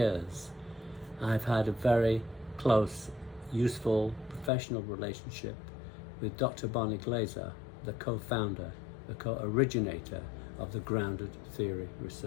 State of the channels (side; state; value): right; drops out; at 4.5 s